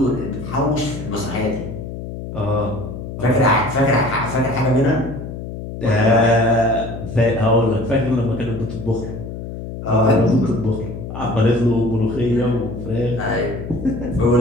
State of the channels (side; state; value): left; noise; hum, 9 dB below the sound